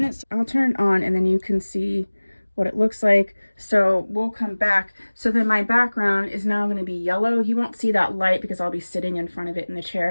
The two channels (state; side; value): inverted; both; correlation -1.00